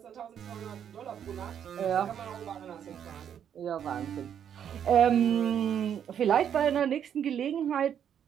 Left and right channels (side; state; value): left; quieter; 8.9 dB